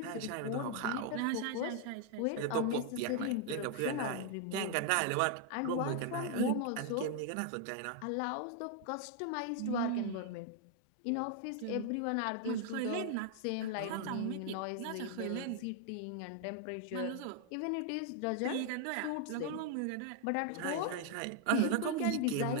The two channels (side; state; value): both; different; correlation 0.00